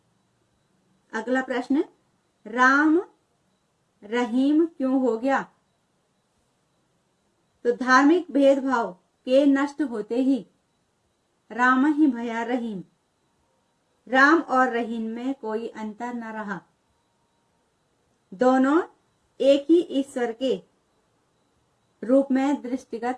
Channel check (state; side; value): identical; both; correlation 1.00